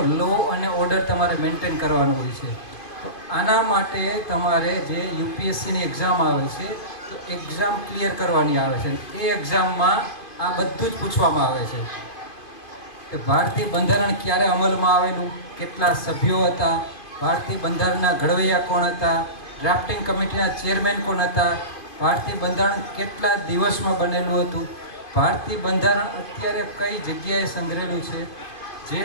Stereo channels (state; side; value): late; right; 2.5 ms